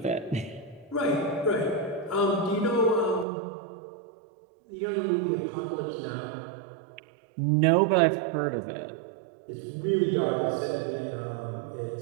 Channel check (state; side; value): drops out; left; at 3.2 s